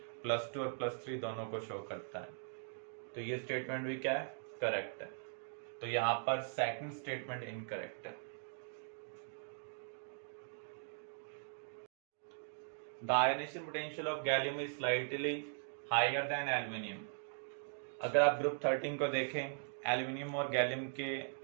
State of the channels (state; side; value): silent; left; digital silence